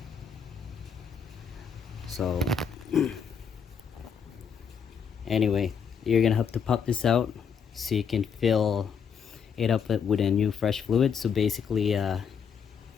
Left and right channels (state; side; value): quieter; right; 6.8 dB